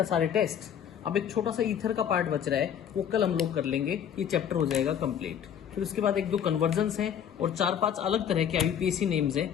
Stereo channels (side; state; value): right; quieter; 8.9 dB